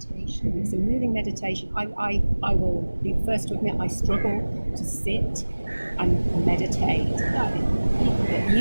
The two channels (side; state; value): both; inverted; correlation -1.00